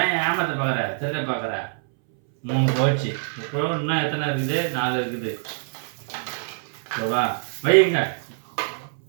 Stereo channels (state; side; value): silent; left; 62 dB below the other